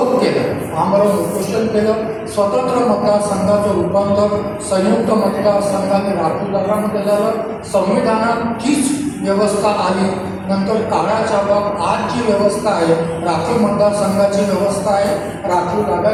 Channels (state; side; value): identical; both; correlation 1.00